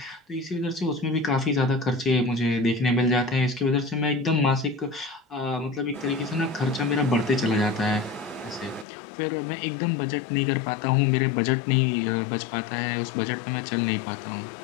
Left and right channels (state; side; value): drops out; right; at 8.8 s